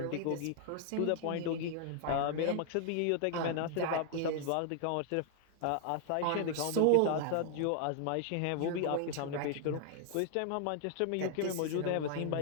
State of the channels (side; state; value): both; different; correlation 0.00